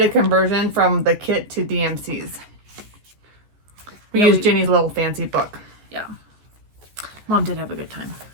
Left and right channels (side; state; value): left; late; 14 ms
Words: a conversion from the kit to DMC's. We used Jenny's little fancy book. Yeah. Mom did have a good time.